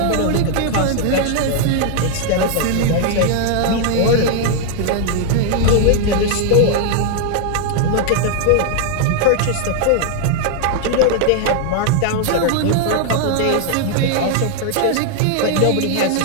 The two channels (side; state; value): both; different; correlation 0.00